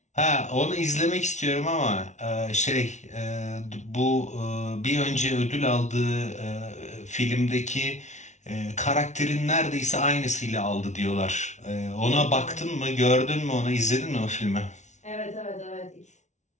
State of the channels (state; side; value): late; right; 0.34 ms